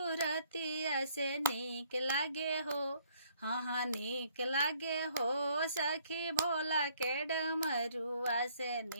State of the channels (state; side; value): inverted; both; correlation -0.64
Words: से नीक लागे हो, हाँ हाँ नीक लागे हो, सखी भोला के डमरुआ से